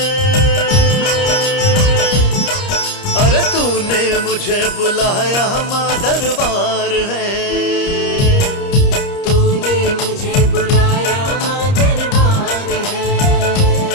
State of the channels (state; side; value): late; right; 30 ms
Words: अरे तूने मुझे बुलाया माँ दरबार है। तूने मुझे बुलाया माँ दरबार है।